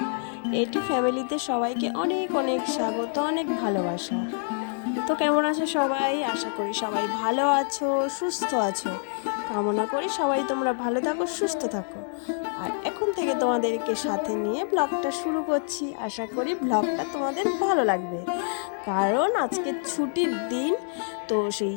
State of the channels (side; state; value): right; silent; digital silence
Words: এটি ফ্যামিলিতে সবাইকে অনেক অনেক স্বাগত, অনেক ভালোবাসা। তো কেমন আছো সবাই? আশা করি সবাই ভালো আছো, সুস্থ আছো। কামনা করি সবাই তোমরা ভালো থাকো, সুস্থ থাকো। আর এখন থেকে তোমাদেরকে সাথে নিয়ে ব্লগটা শুরু করছি। আশা করি ব্লগটা তোমাদের ভালো লাগবে, কারণ আজকে ছুটির দিন। তো সেই